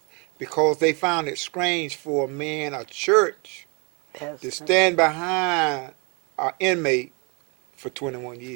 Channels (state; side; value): quieter; left; 32.1 dB